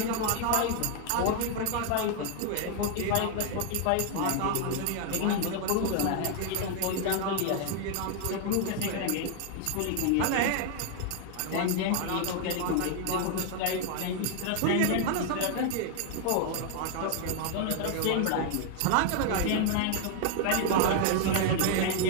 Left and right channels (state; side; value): different; both; correlation 0.00